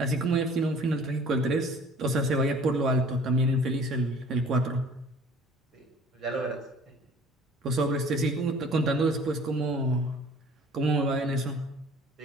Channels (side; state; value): both; normal; correlation 0.49